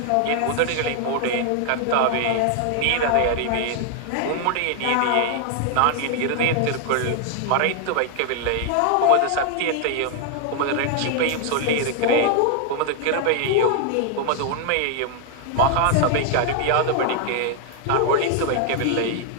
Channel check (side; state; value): both; different; correlation 0.00